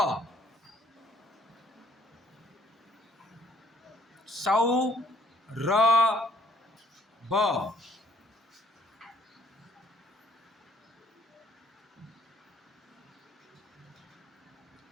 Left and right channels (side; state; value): both; normal; correlation 0.64